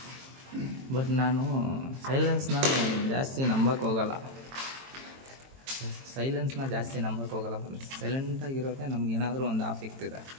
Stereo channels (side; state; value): left; late; 22 ms